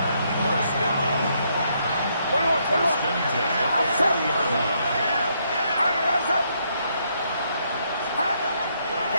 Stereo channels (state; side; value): inverted; both; correlation -0.74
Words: 21. First and 10 at the 40-yard line.